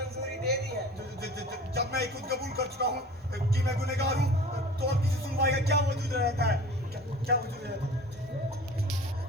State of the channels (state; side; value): normal; both; correlation 0.42